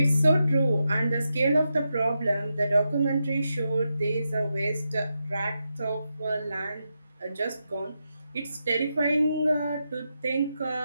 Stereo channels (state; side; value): inverted; both; correlation -0.87